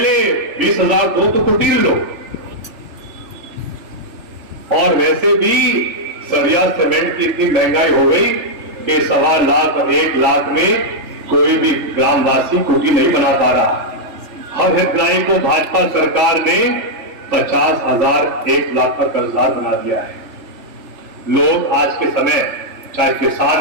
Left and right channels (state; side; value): late; left; 3.4 ms